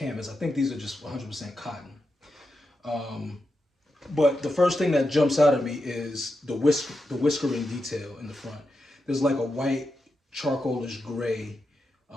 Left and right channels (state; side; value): normal; both; correlation 0.88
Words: I think these are just 100% cotton. But the first thing that jumps out at me is the whiskering detail in the front. There's like a white, charcoalish gray